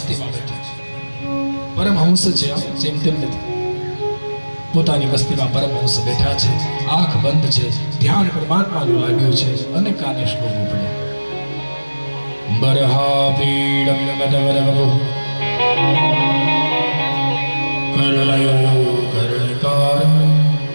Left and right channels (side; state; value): both; inverted; correlation -1.00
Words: બેઠા છે. પરમહંસ છે, જેમ તેમ નથી. પોતાની મસ્તીમાં પરમહંસ બેઠા છે, આંખ બંધ છે, ધ્યાન પરમાત્માનું લાગ્યું છે. અને કાને શ્લોકો પડ્યા. બરહા પીડમ ગદવરવરો કરલયો કરણકાર